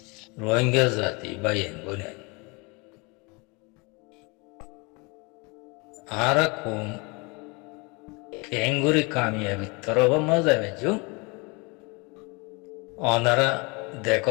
রোহিঙ্গা জাতি বাইন বনে আরা কম কেঙ্গুরি কামিয়াবি তরব মজা বেজু অনারা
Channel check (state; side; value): quieter; right; 28.9 dB